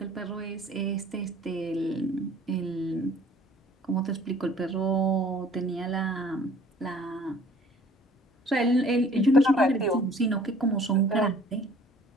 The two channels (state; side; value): normal; both; correlation 0.53